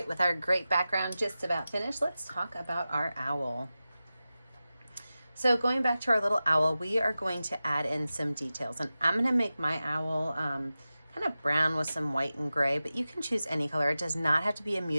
with our great background just about finished, let's talk about our owl. So going back to our little owl, we are going to add in some details, and I'm gonna make my owl kind of brown with some white and gray, but you can choose any color. It does not have to be a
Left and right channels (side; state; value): both; inverted; correlation -0.94